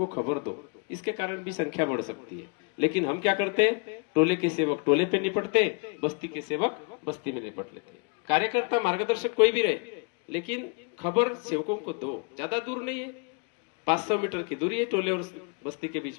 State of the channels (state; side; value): quieter; right; 34.5 dB